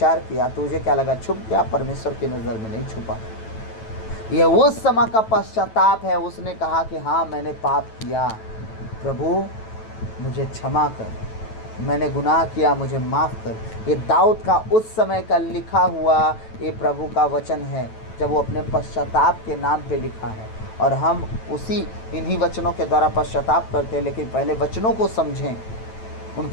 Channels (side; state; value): right; late; 9.1 ms